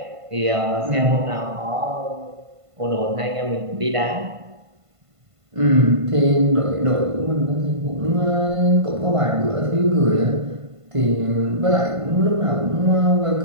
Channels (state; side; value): late; left; 1.5 ms